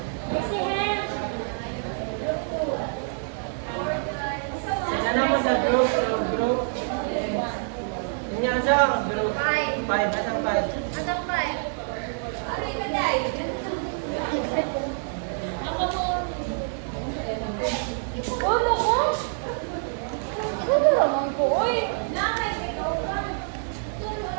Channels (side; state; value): left; silent; 61 dB below the other